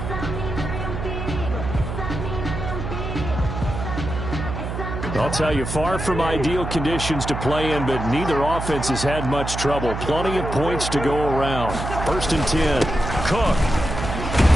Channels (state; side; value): noise; right; hum, 5 dB below the sound